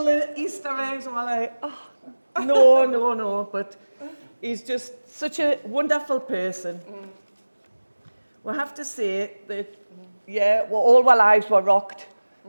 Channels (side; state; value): both; inverted; correlation -1.00